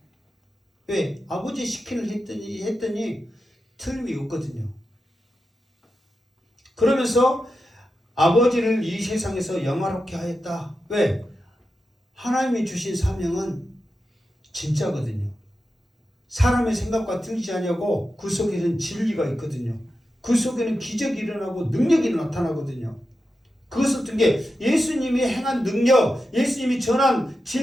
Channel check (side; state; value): both; normal; correlation 0.90